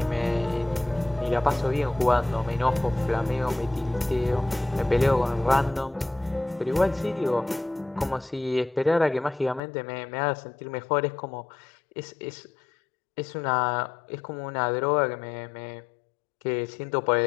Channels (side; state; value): right; drops out; at 9.6 s